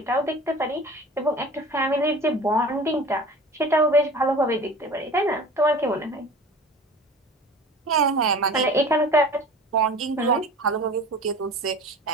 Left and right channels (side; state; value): both; normal; correlation 0.40